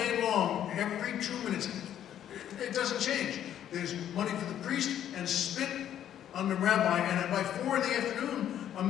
long, every 2 minutes. It doesn't change. There's money for the priest and spit on the rabbi, and by 4 in the afternoon, a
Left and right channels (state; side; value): quieter; right; 10.6 dB